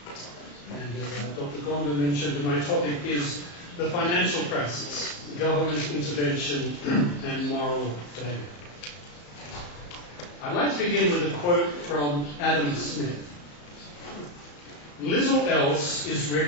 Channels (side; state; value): right; late; 34 ms